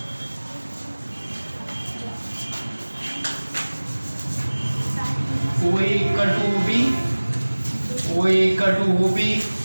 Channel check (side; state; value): both; inverted; correlation -1.00